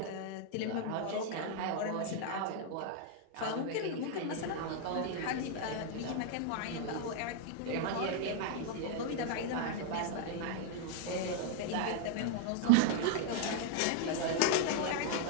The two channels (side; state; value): both; different; correlation 0.00